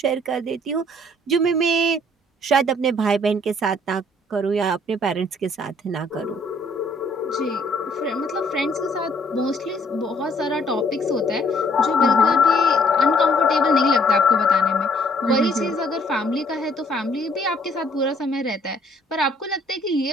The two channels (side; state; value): both; normal; correlation 0.62